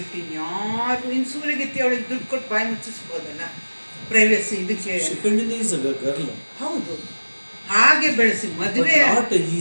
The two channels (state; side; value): inverted; both; correlation -1.00